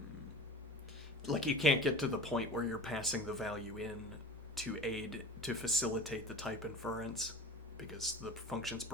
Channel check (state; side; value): normal; both; correlation 0.36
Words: like you can't get to the point where you're passing the value in to facilitate the type inference because the function's